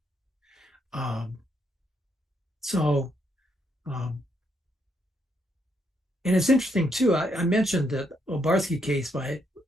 And it's interesting too, I mentioned the Obarski case by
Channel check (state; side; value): normal; both; correlation 0.76